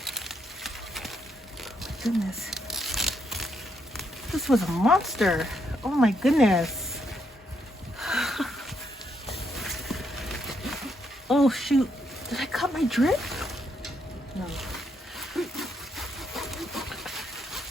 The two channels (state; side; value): normal; both; correlation 0.76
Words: Oh my goodness. This was a monster. Oh my goodness. Oh shoot. Did I cut my drip? No.